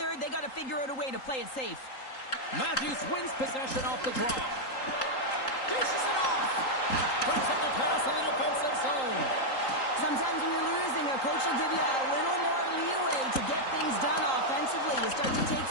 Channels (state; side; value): late; right; 3.8 ms